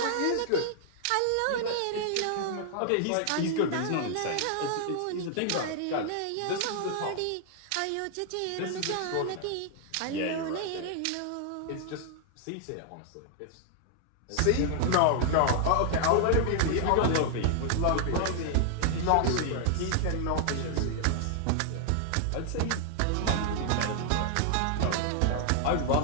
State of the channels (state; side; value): different; both; correlation 0.00